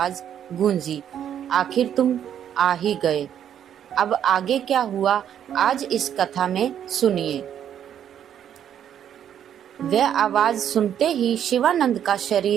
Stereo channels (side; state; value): left; quieter; 9.6 dB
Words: गूंजी, आखिर तुम आ ही गए। अब आगे क्या हुआ, आज इस कथा में सुनिए। वह आवाज सुनते ही शिवानंद का